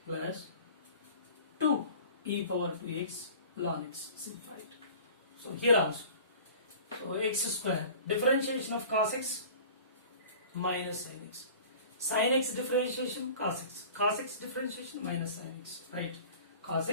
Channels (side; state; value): both; inverted; correlation -0.43